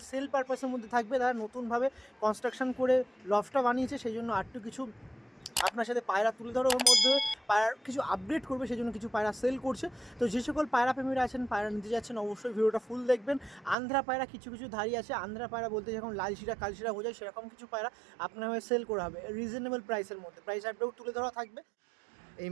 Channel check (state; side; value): drops out; left; at 13.8 s